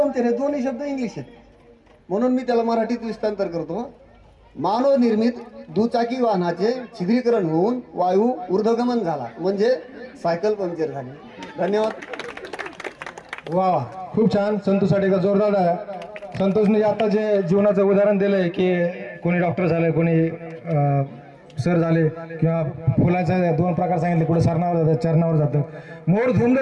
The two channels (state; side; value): identical; both; correlation 1.00